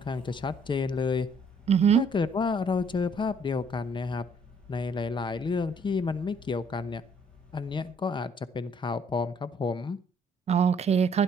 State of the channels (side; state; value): both; normal; correlation 0.63